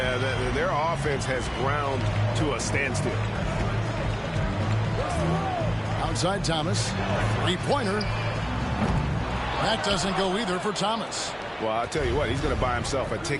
their offense has ground to a standstill. Outside Thomas. Three-pointer. That doesn't go either for Thomas. Well, I'll tell you what, he's going to buy himself a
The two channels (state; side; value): identical; both; correlation 1.00